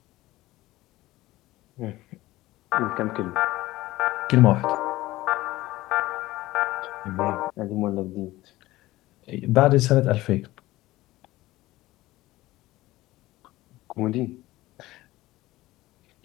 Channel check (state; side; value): quieter; right; 17.6 dB